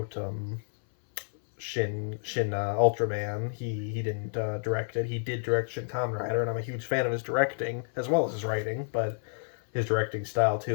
Shin Ultraman. He didn't direct it. He did direct Shin Kamen Rider, and I'm a huge fan of his directing as well as his writing, but his directing style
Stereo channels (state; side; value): silent; right; 58 dB below the other